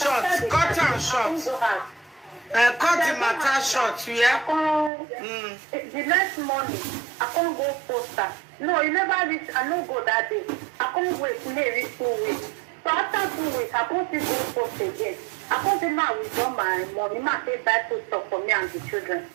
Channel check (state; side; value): drops out; left; at 4.9 s